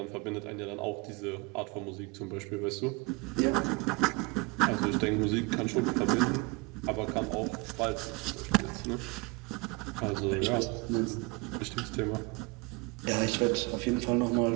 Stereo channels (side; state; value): left; quieter; 27.7 dB